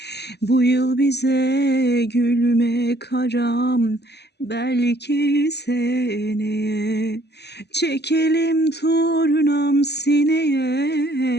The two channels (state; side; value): late; right; 0.49 ms